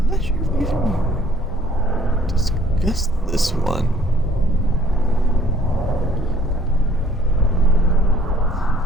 not sure if we even discussed this one.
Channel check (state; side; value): normal; both; correlation 0.59